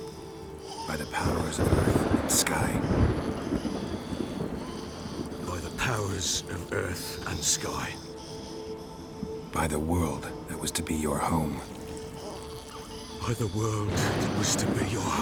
By the powers of earth and sky. By the powers of earth and sky. By the world that was to be your home. By the world that was to be your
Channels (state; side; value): identical; both; correlation 1.00